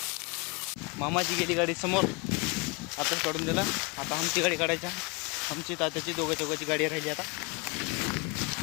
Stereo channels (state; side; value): quieter; right; 29.5 dB